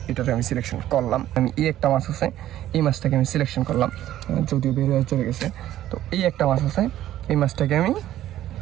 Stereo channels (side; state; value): left; quieter; 13.1 dB